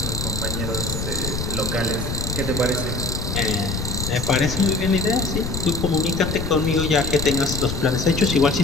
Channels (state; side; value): noise; left; rumble, 4 dB below the sound